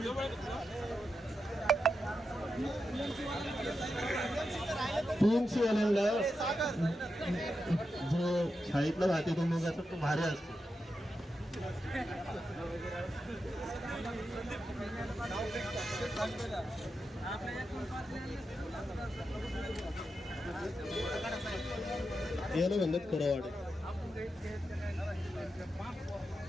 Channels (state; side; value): normal; both; correlation 0.88